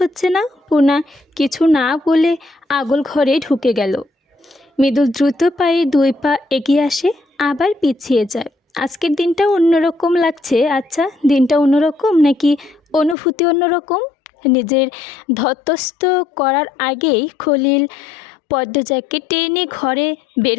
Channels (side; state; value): right; drops out; at 13.2 s